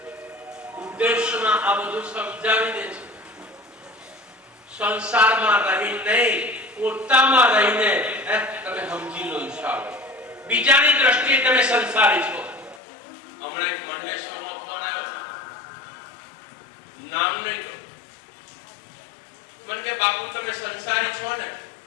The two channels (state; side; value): drops out; right; at 12.8 s